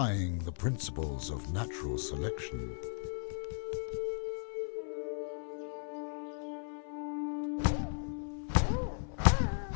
the principles of natural selection.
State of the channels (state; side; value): silent; right; 54 dB below the other